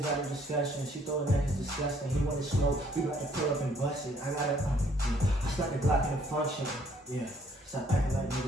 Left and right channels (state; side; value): normal; both; correlation 0.63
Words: not a discussion. She thought that is disgusting. He wanted smoke. We about to pull up and bust it. I gotta, I stuck the Glock in the function. Yeah. Stop acting like